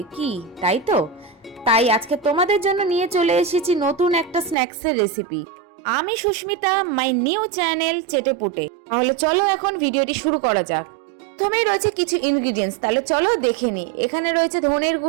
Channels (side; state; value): left; drops out; at 4.5 s